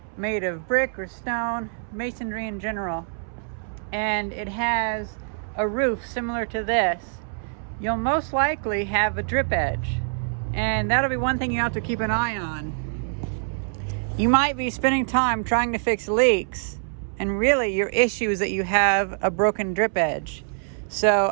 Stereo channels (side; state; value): left; silent; 62 dB below the other